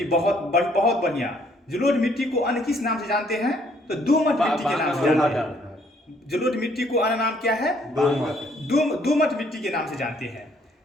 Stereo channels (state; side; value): normal; both; correlation 0.65